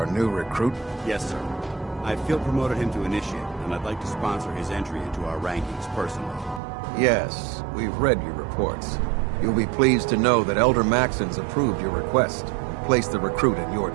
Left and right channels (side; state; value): left; drops out; at 6.6 s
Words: new recruit? Yes, sir. I feel promoted him to initiate, and I'd like to sponsor his entry into our rankings personally. Yes, we've read your reports. You'll be pleased to know that Elder Maxon's approved your request and placed the recruit in your